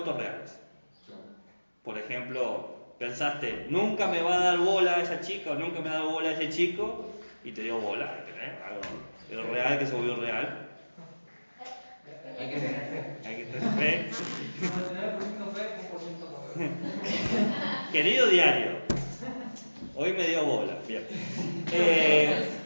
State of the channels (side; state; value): both; inverted; correlation -1.00